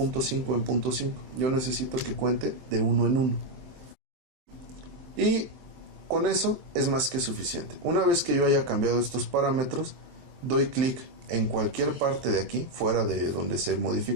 5 en punto 5. Yo necesito que cuente de 1 en 1. Y con eso es más que suficiente. Una vez que yo haya cambiado estos parámetros, doy clic en cualquier parte de aquí, fuera de donde se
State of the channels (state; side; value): late; left; 23 ms